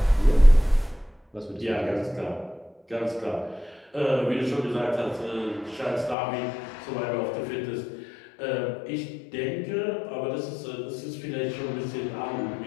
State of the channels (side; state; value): right; drops out; at 6.2 s